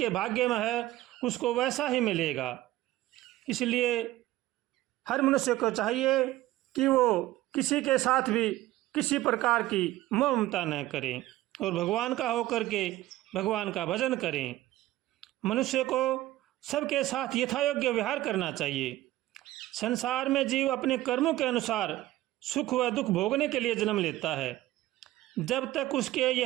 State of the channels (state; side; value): quieter; left; 16.0 dB